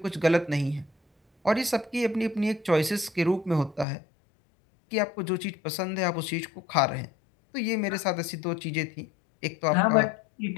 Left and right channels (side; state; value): right; drops out; at 3.9 s